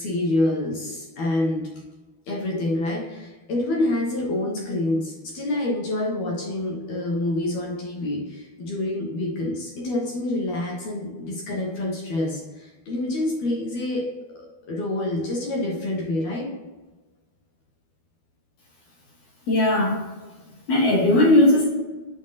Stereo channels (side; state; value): right; late; 12 ms